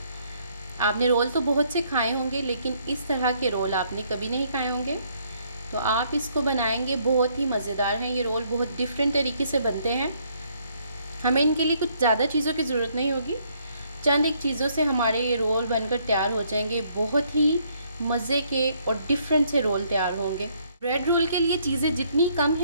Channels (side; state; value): both; inverted; correlation -0.68